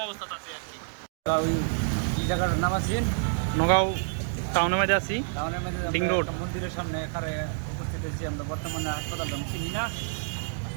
অবস্থা আছি আর কি। এই জায়গাটার নাম আছেন নগাঁও টাউনের মধ্যে আছি, টাউনের মধ্যে ডিং রোড মন্দিরের সামনে এখানে উপস্থিত হয়েছি আমরা। বর্তমানে হাসপাতাল আমি চিনি না,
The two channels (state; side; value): silent; left; digital silence